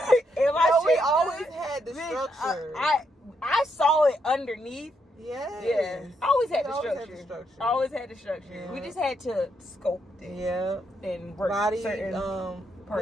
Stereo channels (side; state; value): both; normal; correlation 0.77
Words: Am I shaped? We always had the structure. I saw it underneath. Yeah. I always had the structure. Always had the structure. Yeah. We just had to sculpt it. Yeah. And work body certain parts.